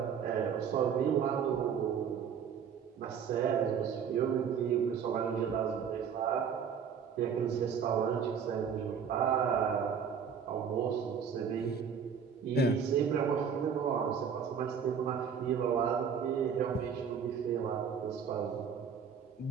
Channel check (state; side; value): quieter; left; 7.1 dB